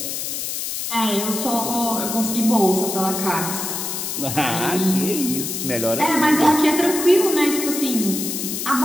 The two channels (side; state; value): left; noise; hiss, 4 dB below the sound